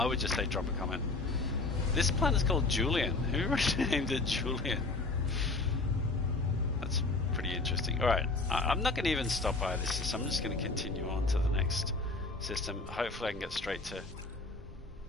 would just say drop a comment. This planet's called Julian. Who named it Julian? That's pretty interesting. Alright, I'm not going to even stop by this system. I'm just going to continue on to the next system. Hopefully I can get straight to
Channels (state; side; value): quieter; right; 3.4 dB